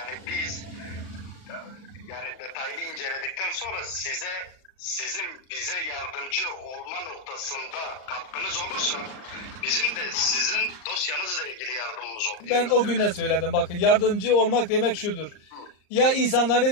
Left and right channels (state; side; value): late; right; 38 ms